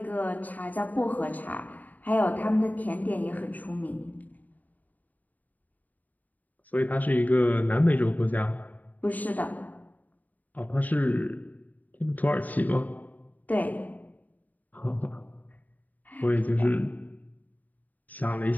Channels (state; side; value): late; right; 0.079 ms